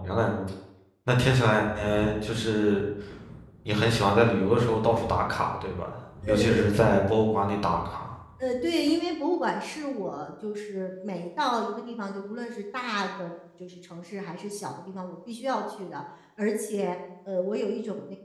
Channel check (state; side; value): identical; both; correlation 1.00